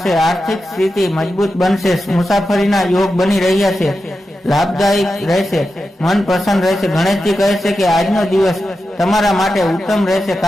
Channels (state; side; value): normal; both; correlation 0.90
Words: આર્થિક સ્થિતિ મજબૂત બનશે. મુસાફરીના યોગ બની રહ્યા છે. લાભદાયક રહેશે. મન પ્રસન્ન રહેશે. ગણેશજી કહે છે કે આજનો દિવસ તમારા માટે ઉત્તમ રહેશે.